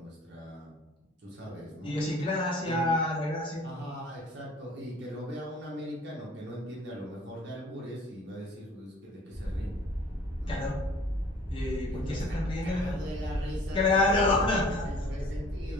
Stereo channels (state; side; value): normal; both; correlation 0.51